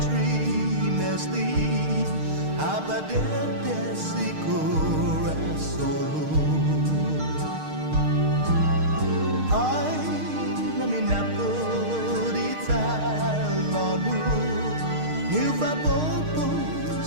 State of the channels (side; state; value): left; late; 6.5 ms